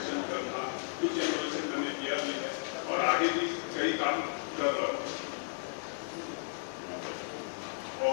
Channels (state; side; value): silent; right; digital silence